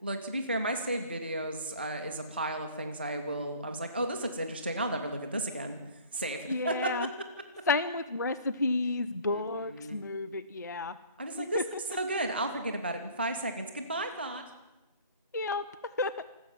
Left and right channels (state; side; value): inverted; both; correlation -0.47